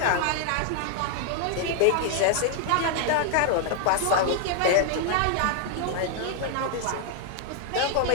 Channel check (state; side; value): different; both; correlation 0.00